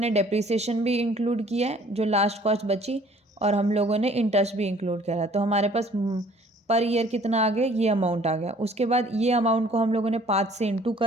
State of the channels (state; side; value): normal; both; correlation 0.56